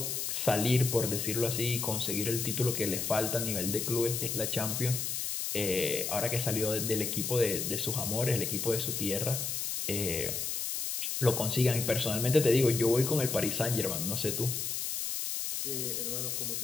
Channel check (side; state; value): left; noise; hiss, 2 dB below the sound